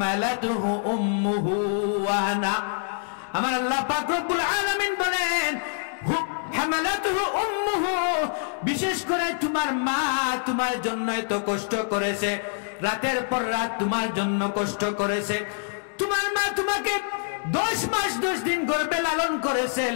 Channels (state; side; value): silent; right; 61 dB below the other